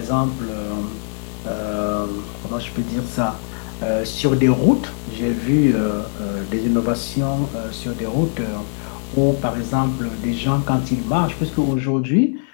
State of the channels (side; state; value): right; silent; digital silence